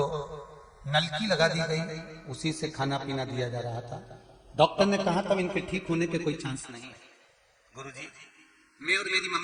नलकी लगा दी गई, उसी से खाना पीना दिया जा रहा था। डॉक्टर ने कहा तब इनके ठीक होने के कोई चांस नहीं है। गुरुजी, मैं और मेरी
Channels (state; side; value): identical; both; correlation 1.00